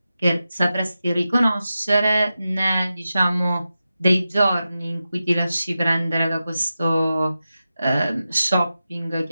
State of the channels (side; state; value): both; inverted; correlation -0.92